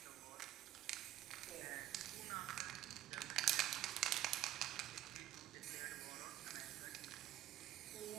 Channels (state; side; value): quieter; left; 13.4 dB